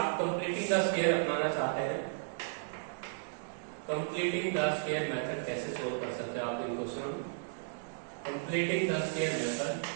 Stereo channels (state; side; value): silent; left; 55 dB below the other